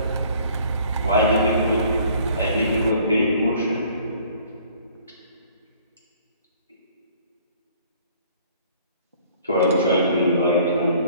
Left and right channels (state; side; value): inverted; both; correlation -0.55